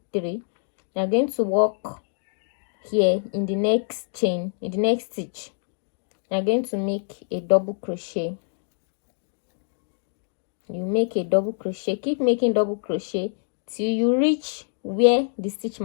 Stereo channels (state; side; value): silent; right; digital silence